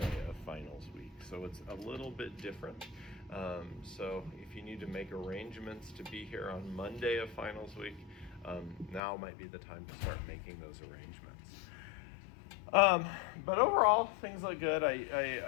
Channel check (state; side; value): drops out; right; at 9.0 s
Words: of finals week. So it's a little bit different. So if you need to make arrangements to be here on Monday of finals week, now might be the time to start making those arrangements. But overall, things look good.